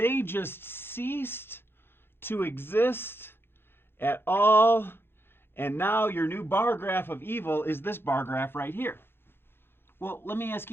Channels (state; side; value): late; right; 0.11 ms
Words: just ceased to exist at all. And now your new bar graph of evil is this bar graph right here. Well, let me ask